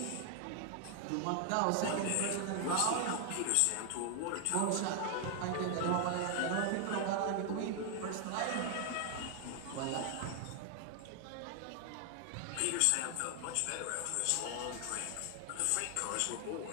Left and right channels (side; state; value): both; different; correlation 0.00